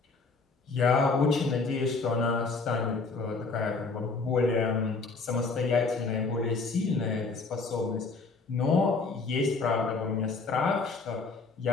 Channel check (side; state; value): right; quieter; 4.1 dB